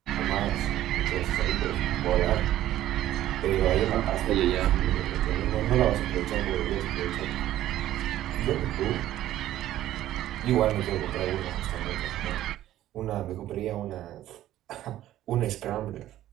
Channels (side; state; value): left; quieter; 13.4 dB